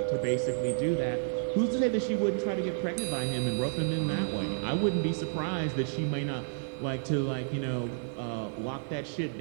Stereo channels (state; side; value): silent; left; digital silence